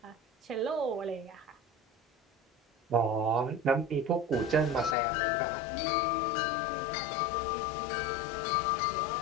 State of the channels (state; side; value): drops out; right; at 5.0 s